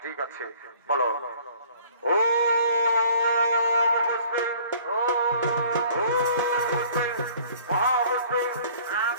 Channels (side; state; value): both; inverted; correlation -0.53